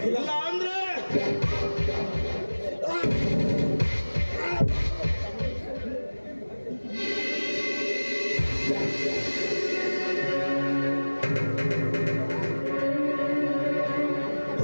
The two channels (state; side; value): inverted; both; correlation -1.00